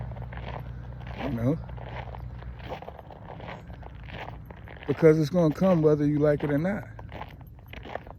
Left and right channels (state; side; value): identical; both; correlation 1.00